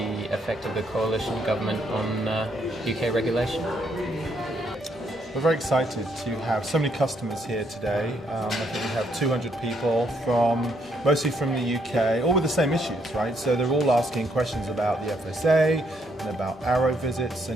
effect of the coalition government on UK regulation. We're very excited to have so many customers here today. I think we have 200 people mostly from the UK, all with the same issues, right? So they're all asking questions about the FSA and about Arrow visits,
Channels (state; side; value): normal; both; correlation 0.73